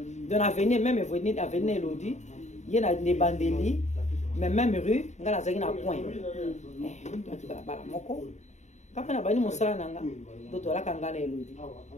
de l'avenir même venir avenir Elodie yena ne bandeli mais même rue ngala azaki na point bala moko kapa na bani mosala nanga doto la kanga na Elodie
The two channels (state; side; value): late; right; 0.34 ms